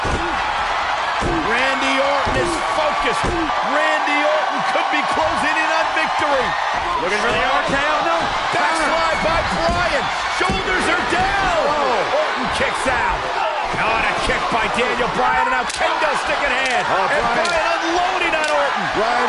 Randy Orton is focused. Randy Orton could be closing in on victory. Looking for the RKO. No. Backslide by Bryan. Shoulders are down. Orton kicks out. Oh, and a kick by Daniel Bryan, and now kendo stick in hand. And Bryan unloading on Orton. Bryan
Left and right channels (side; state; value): both; identical; correlation 1.00